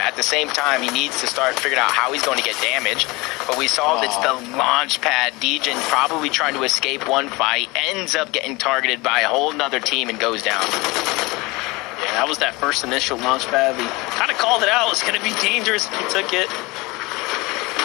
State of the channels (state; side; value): quieter; right; 23.7 dB